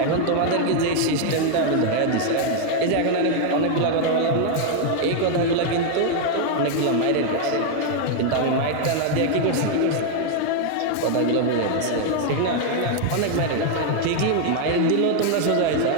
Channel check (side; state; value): both; different; correlation 0.00